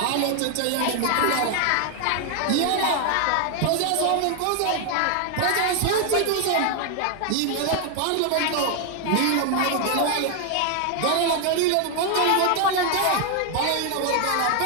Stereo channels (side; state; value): both; different; correlation 0.00